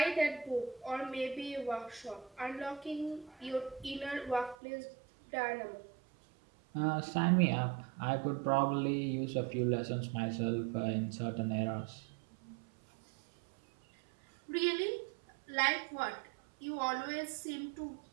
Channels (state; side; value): drops out; left; at 4.5 s